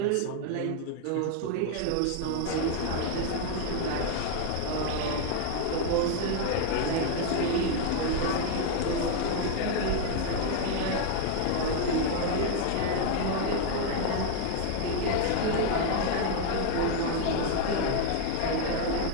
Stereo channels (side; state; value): both; different; correlation 0.00